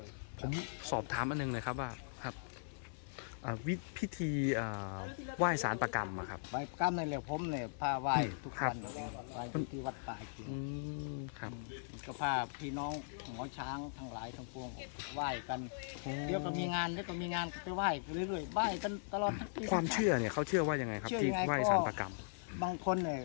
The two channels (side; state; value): right; silent; 52 dB below the other